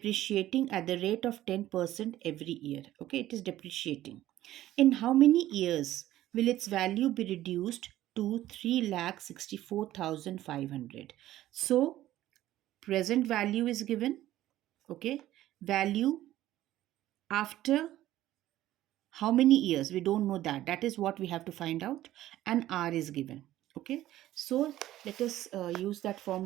at the rate of 10% every year. Okay, it is depreciating. In how many years will its value be reduced to 3,64,500? So present value is given. Okay, value after how many years, we don't know that is what we have to find out, and r is given. Okay, so let us use that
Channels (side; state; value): left; quieter; 14.2 dB